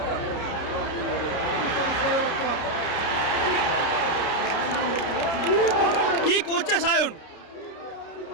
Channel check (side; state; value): right; late; 30 ms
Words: কি করছে সায়ন?